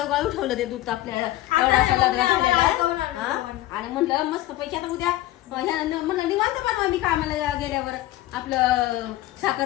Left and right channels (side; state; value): right; quieter; 16.0 dB